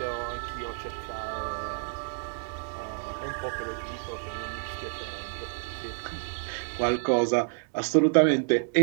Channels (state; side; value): silent; left; digital silence